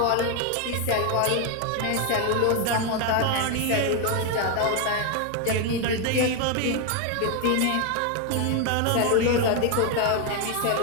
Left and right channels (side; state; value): both; different; correlation 0.01